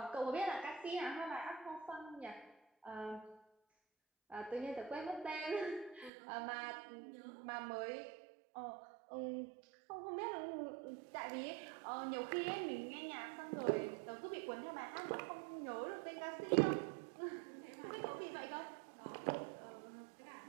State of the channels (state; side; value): drops out; left; at 6.1 s